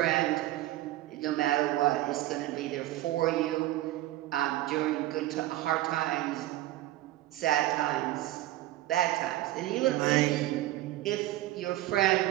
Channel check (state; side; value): quieter; left; 15.4 dB